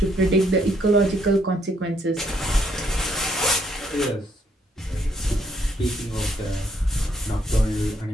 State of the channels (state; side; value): normal; both; correlation 0.70